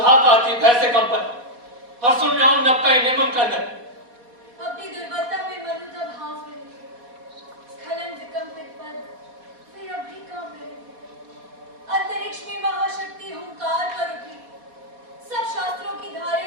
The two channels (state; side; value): late; left; 4.1 ms